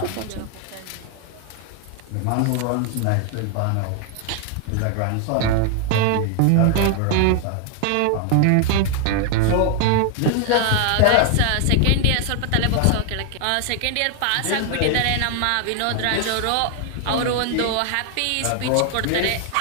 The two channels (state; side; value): different; both; correlation 0.00